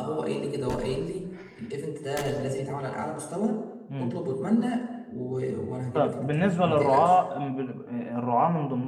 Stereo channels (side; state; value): both; identical; correlation 1.00